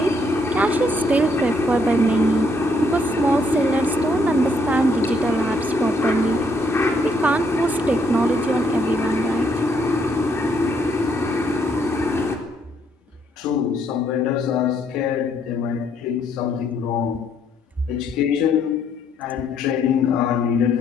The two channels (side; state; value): both; normal; correlation 0.71